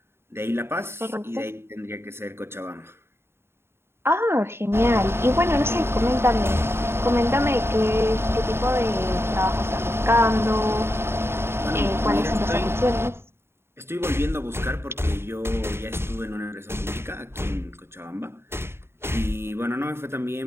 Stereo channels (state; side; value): late; left; 0.12 ms